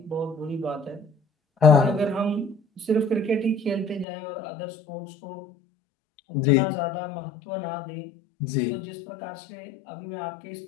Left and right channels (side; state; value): right; drops out; at 4.0 s